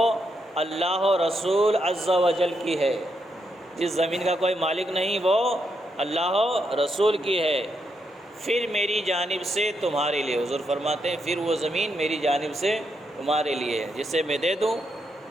اللہ و رسول عز و جل کی ہے۔ جس زمین کا کوئی مالک نہیں وہ اللہ و رسول کی ہے، پھر میری جانب سے تمہارے لیے، حضور فرماتے ہیں پھر وہ زمین میری جانب سے تمہارے لیے ہے، جسے میں دے دوں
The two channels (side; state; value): both; normal; correlation 0.80